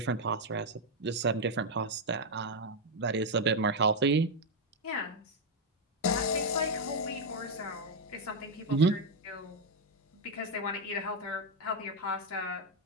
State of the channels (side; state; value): both; normal; correlation 0.02